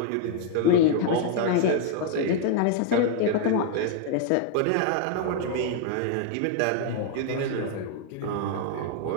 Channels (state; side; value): different; both; correlation 0.00